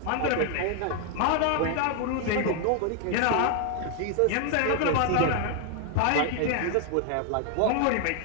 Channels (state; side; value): different; both; correlation 0.00